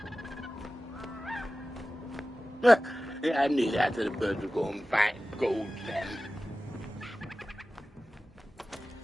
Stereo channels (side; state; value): both; normal; correlation 0.96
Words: I knew that the birds were going back gold then.